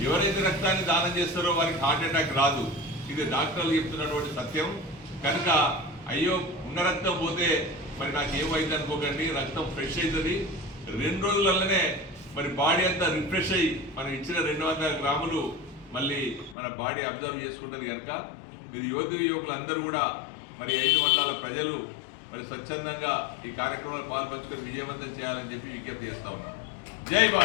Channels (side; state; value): right; drops out; at 16.6 s